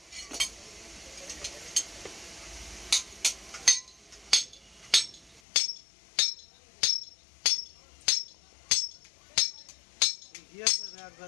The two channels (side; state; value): right; drops out; at 5.4 s